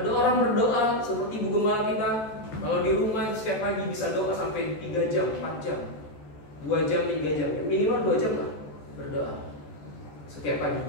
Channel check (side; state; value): right; late; 14 ms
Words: orang berdoa seperti ibu gembala kita, kalau di rumah setiap pagi bisa doa sampai 3 jam, 4 jam, 2 jam, 3 jam, minimal 2 jam lah berdoa setiap